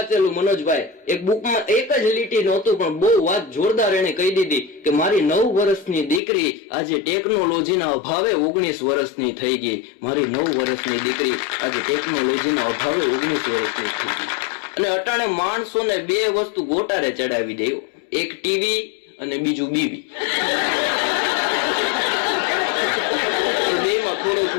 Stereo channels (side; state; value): right; drops out; at 6.2 s